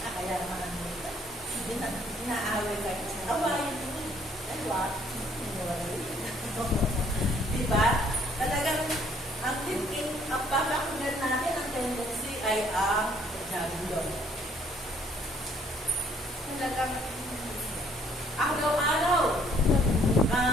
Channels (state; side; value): normal; both; correlation 0.63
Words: Kaya naman ang nito. Inaaway kayo sa awayin mo. Ay, what? Diba? Talagang ang papakunan natin ang tendency ay ang Diablo. Talagang araw-araw